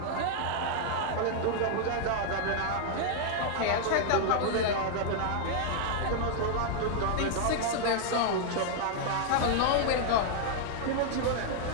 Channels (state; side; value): different; both; correlation -0.01